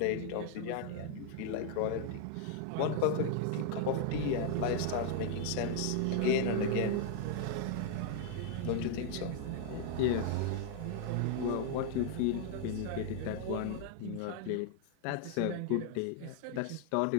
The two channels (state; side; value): different; both; correlation 0.00